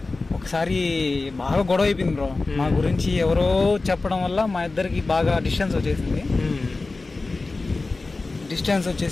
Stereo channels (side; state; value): right; quieter; 3.5 dB